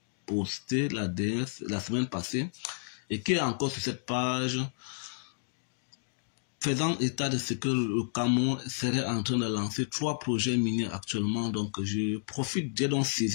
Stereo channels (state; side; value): silent; right; digital silence